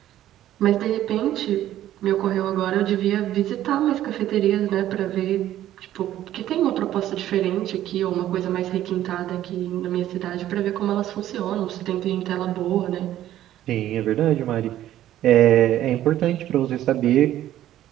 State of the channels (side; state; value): left; quieter; 12.8 dB